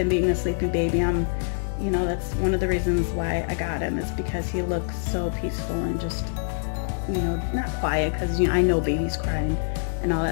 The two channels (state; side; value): silent; right; digital silence